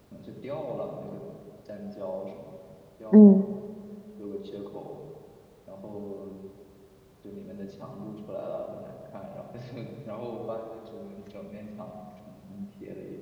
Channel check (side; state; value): both; identical; correlation 1.00